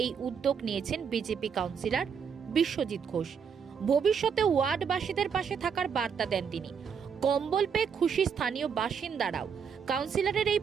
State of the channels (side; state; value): left; quieter; 6.7 dB